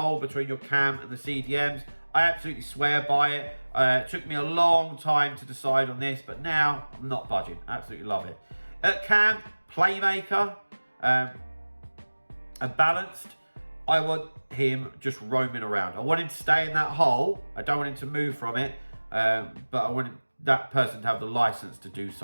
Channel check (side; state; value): both; inverted; correlation -1.00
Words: between your cam and the CDMs. I absolutely swear by it. It took me a long time to decide on this, but now I'm not budging. Absolutely love it. At cam, playmaker. And balanced, I want him just roaming around. I want him to stay in that hole. I don't want him to move from it, but I want that person to have the license to do